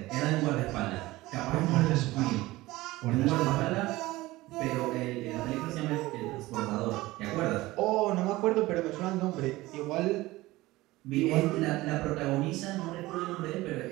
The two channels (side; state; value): left; quieter; 18.8 dB